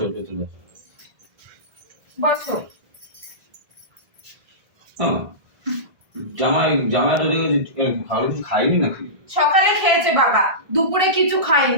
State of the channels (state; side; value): late; left; 1.7 ms